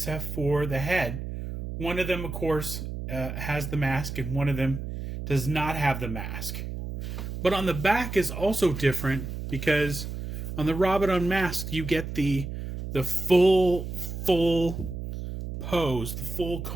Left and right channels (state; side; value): noise; right; hum, 7 dB below the sound